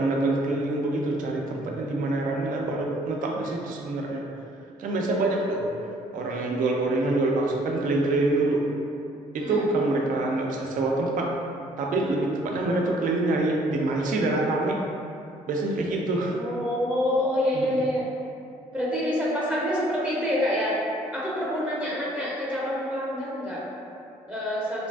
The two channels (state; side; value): normal; both; correlation 0.60